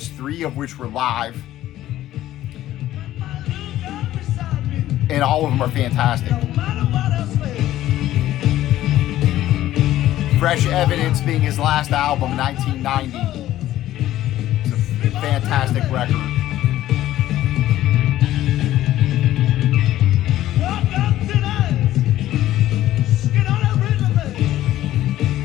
3 of which were live. And all of them are fantastic. Fresh Evidence being his last album, 1990. It's a fantastic record.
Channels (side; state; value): right; quieter; 13.9 dB